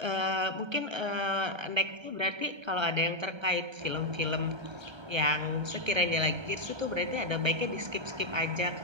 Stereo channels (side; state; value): left; late; 1.3 ms